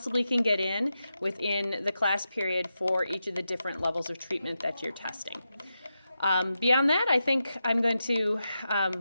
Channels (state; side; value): inverted; both; correlation -0.89